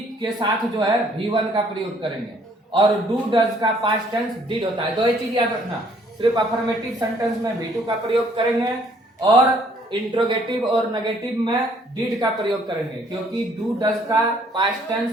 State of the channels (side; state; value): both; normal; correlation 0.62